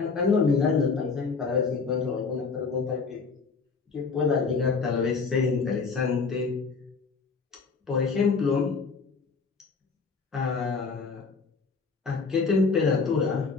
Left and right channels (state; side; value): quieter; right; 4.8 dB